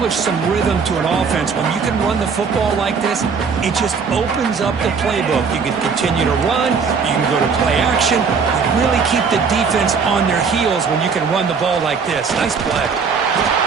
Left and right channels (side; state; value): left; quieter; 5.6 dB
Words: some rhythm to an offense. When you can run the football like this, it just opens up the playbook. You can continue to run. You can go to play action. You really keep the defense on their heels when you can run the ball like this. Nice play.